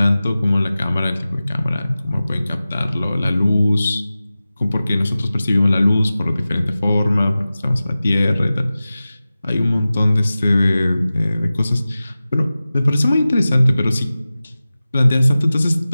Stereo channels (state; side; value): inverted; both; correlation -0.96